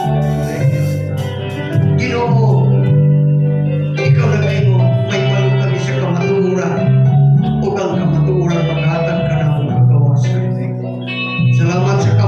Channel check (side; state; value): both; identical; correlation 1.00